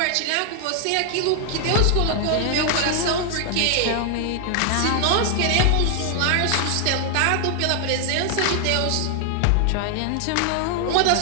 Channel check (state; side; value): different; both; correlation 0.00